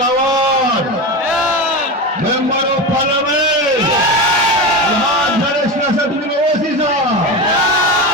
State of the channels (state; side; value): normal; both; correlation 0.21